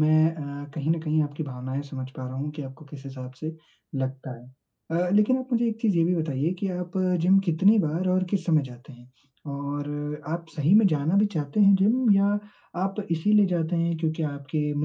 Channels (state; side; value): identical; both; correlation 1.00